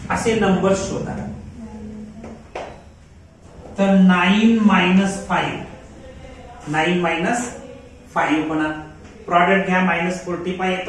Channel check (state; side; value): identical; both; correlation 1.00